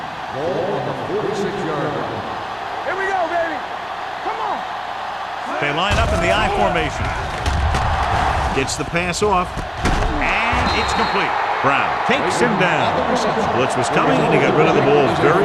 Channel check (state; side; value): identical; both; correlation 1.00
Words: Ball on the 46-yard line. Here we go, baby. Come on. They line up in the I formation. Gets the pass off, and it's complete. Brown takes him down. Blitz was coming, and he got rid of the ball